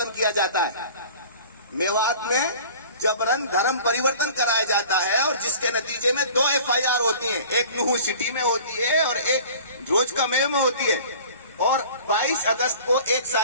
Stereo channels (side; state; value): both; inverted; correlation -0.44